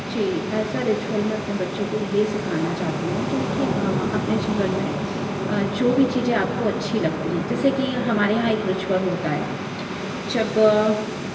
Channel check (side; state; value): both; identical; correlation 1.00